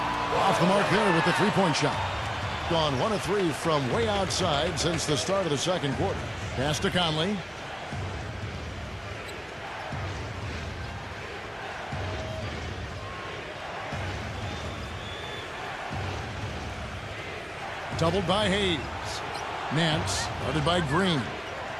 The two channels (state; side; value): identical; both; correlation 1.00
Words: the mark there with the 3-point shot. Gone 1 of 3 from way outside since the start of the second quarter. Pass to Conley. Doubled by Hayes. Nance guarded by Green.